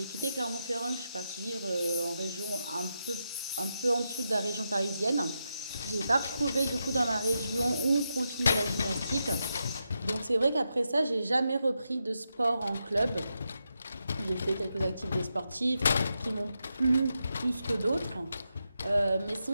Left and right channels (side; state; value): both; inverted; correlation -0.85